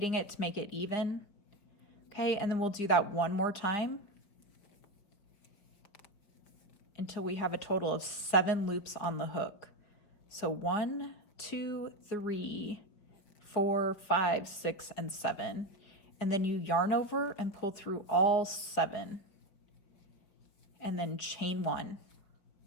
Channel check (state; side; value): late; right; 5.0 ms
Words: it to make it even? Okay, and then we'll do that 1 more time until we have a total of 7 loops on the hook. So 1, 2, 3, 4, 5, 6, and 7. And then you yarn over and pull through all 7. And then chain 1.